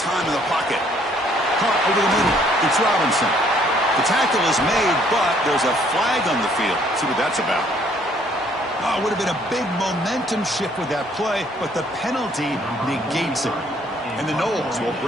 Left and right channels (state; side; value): normal; both; correlation 0.63